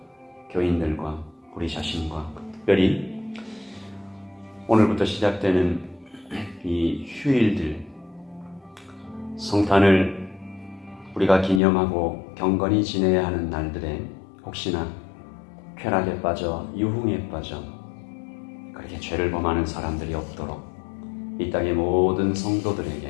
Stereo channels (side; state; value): right; drops out; at 11.6 s